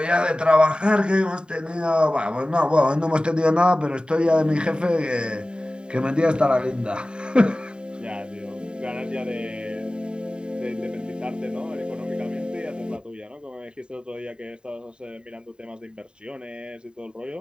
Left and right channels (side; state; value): left; late; 0.050 ms